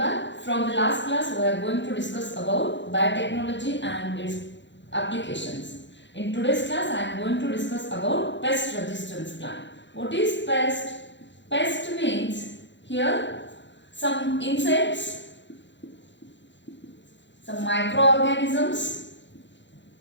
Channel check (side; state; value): right; late; 0.53 ms